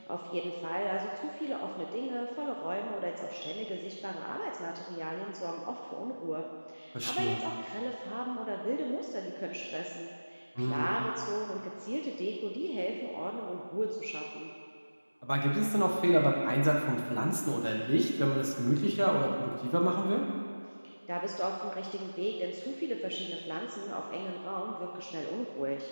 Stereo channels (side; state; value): both; inverted; correlation -1.00